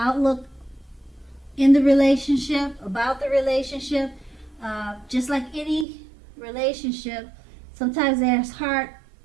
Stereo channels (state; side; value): drops out; left; at 5.9 s